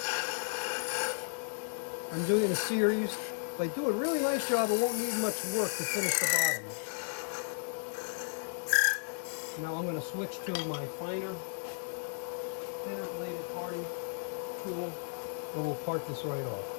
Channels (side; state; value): right; silent; 55 dB below the other